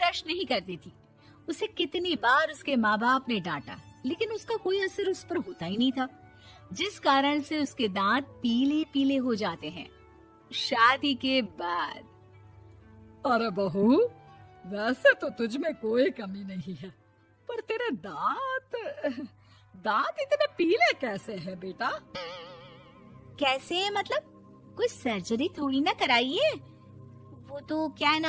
नहीं करती थी। उसे कितनी बार उसके माँ बाप ने डांटा, लेकिन उसका कोई असर उस पर होता ही नहीं था, जिस कारण से उसके दांत पीले पीले हो जाते हैं। शादी के बाद। अरे बहू, वैसे तो तुझ में कोई कमी नहीं है, पर तेरे दांत इतने पीले कैसे हैं बेटा? कैसे मतलब? कोई सर्जरी थोड़ी ना कराई है। वो तो क्या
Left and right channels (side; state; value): both; identical; correlation 1.00